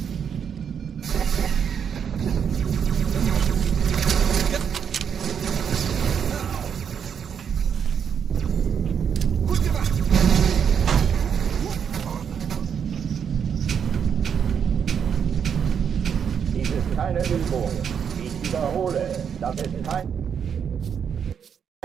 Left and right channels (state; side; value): quieter; left; 7.6 dB